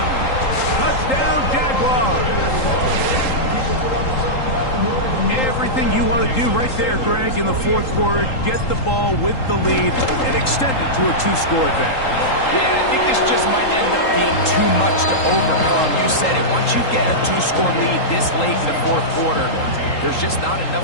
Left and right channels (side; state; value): right; late; 3.8 ms